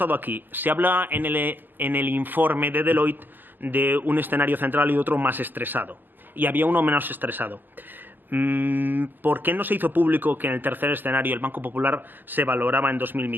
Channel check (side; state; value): left; late; 0.092 ms